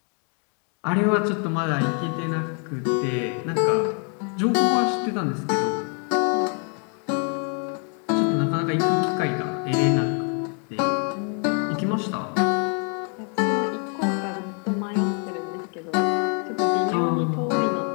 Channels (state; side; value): quieter; right; 39.5 dB